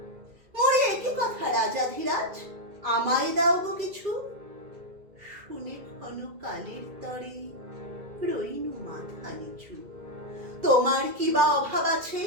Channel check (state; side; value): late; left; 2.3 ms